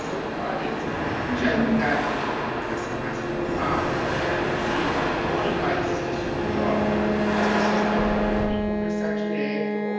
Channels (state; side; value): identical; both; correlation 1.00